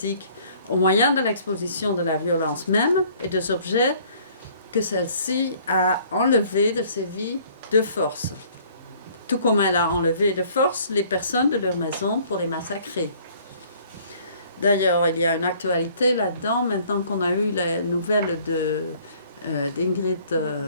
au moyen de l'exposition de la violence même et des objets que celle-ci a enlevés de ses vies de force, tout comme elle a enlevé de force les personnes de leur maison pour les massacrer. D'ailleurs, il y a une actualité là-dedans, maintenant qu'on a eu les nouvelles d'Ingrid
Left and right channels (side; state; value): both; inverted; correlation -0.57